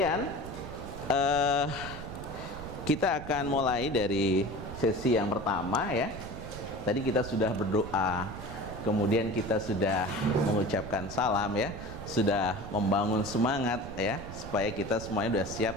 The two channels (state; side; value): noise; right; rumble, 11 dB below the sound